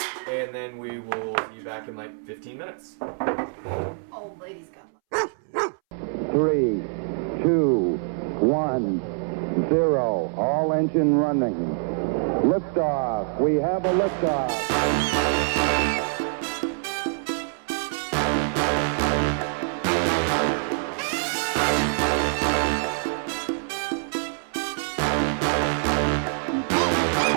and then we will see you back in like 15 minutes. Old lady's got 3, 2, 1, 0. All engine running. Liftoff. We have a liftoff.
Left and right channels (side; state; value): left; silent; 62 dB below the other